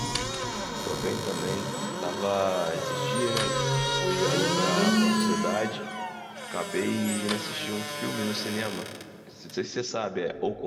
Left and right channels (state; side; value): identical; both; correlation 1.00